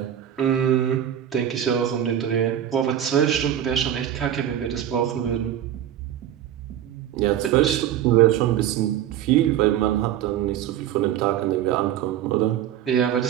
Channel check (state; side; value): quieter; left; 10.7 dB